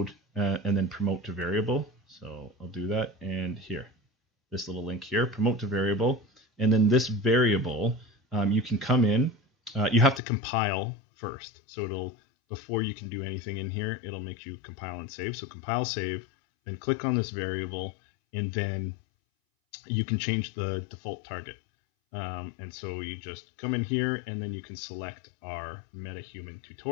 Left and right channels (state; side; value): drops out; right; at 10.2 s